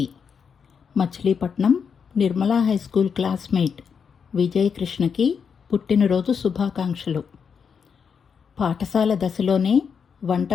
Machilipatnam Nirmala high school classmate Vijay కృష్ణకి పుట్టినరోజు శుభాకాంక్షలు. పాఠశాల దశలోనే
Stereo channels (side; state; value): right; quieter; 6.5 dB